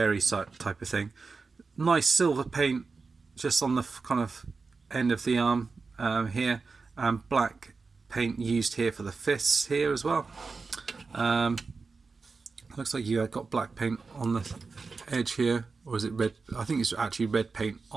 type of thing. Nice silver paint just on the kind of end of the arm here, and black paint used here for the fists here as well. Looks like you got black paint on the edge here, or is it red? I think it's actually red paint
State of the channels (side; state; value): left; quieter; 4.4 dB